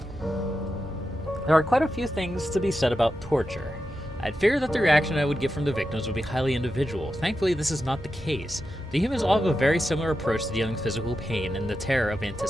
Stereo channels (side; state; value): both; normal; correlation 0.89